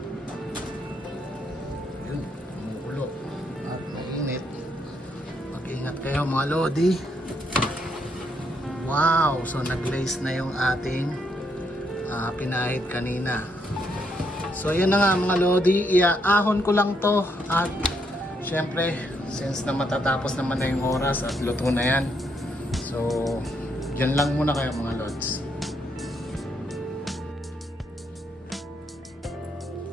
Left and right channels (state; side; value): normal; both; correlation 0.75